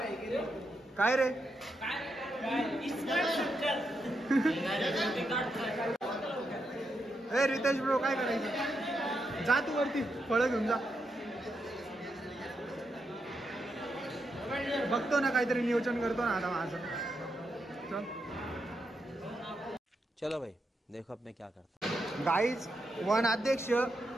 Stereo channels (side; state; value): both; normal; correlation 0.83